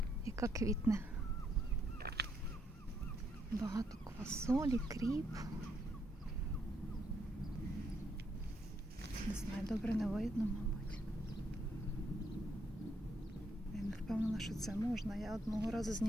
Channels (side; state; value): both; normal; correlation 0.75